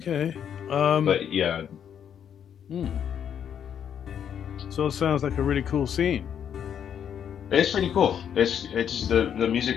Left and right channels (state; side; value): quieter; right; 8.6 dB